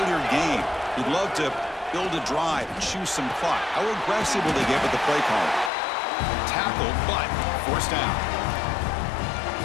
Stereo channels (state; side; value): drops out; right; at 5.7 s